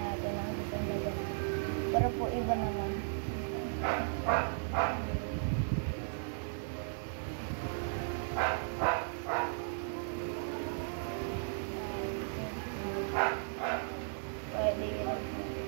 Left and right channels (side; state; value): left; silent; digital silence